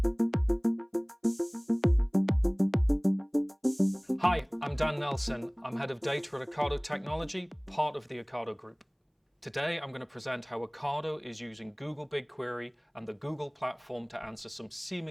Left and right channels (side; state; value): both; identical; correlation 1.00